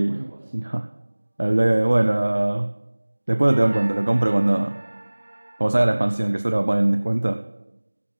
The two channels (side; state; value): both; inverted; correlation -1.00